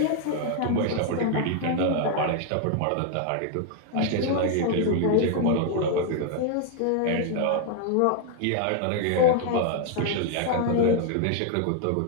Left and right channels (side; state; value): both; different; correlation 0.00